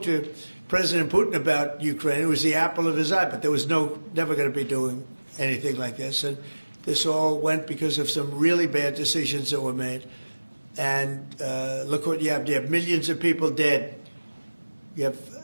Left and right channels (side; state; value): both; inverted; correlation -1.00